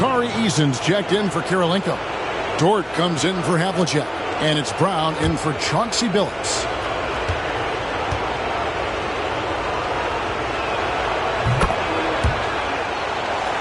Eason's checked in for Kirilenko. Dort comes in for Havlicek. And it's Brown in for Chauncey Billups.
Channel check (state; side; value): identical; both; correlation 1.00